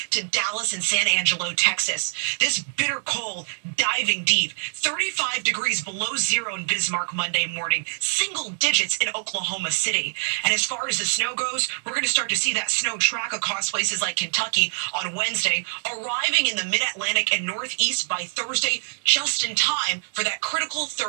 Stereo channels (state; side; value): silent; left; digital silence